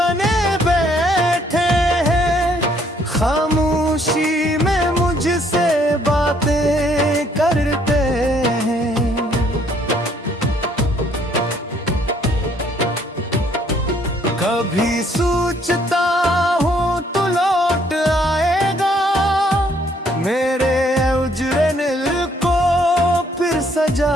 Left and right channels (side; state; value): both; normal; correlation 0.65